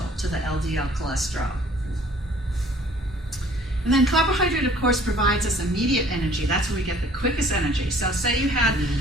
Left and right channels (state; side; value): normal; both; correlation 0.55